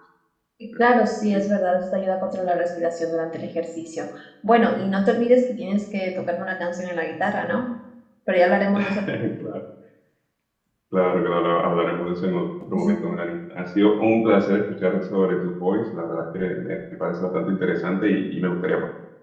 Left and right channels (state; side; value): identical; both; correlation 1.00